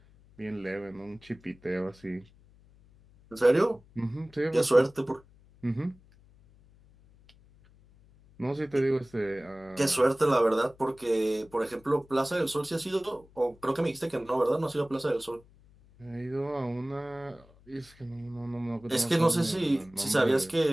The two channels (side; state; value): left; noise; hum, 27 dB below the sound